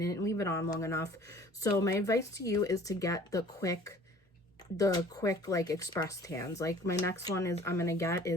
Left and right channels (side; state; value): both; normal; correlation 0.49